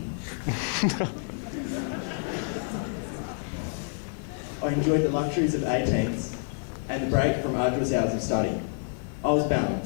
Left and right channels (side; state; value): right; silent; 59 dB below the other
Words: I enjoyed the luxuries of 18s and the break from arduous hours of study. I was